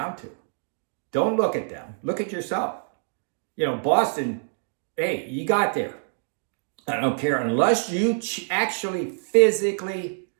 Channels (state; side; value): silent; left; digital silence